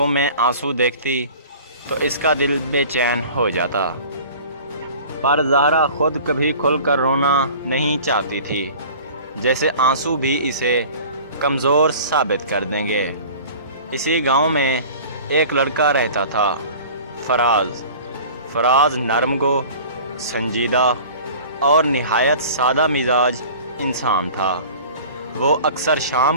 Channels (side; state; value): both; inverted; correlation -0.43